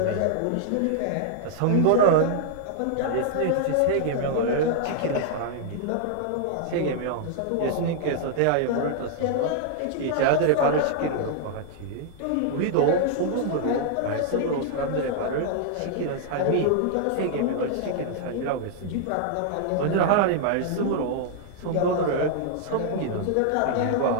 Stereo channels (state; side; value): different; both; correlation -0.01